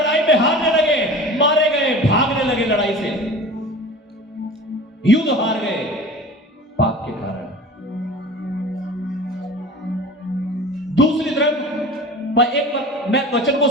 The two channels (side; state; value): both; normal; correlation 0.38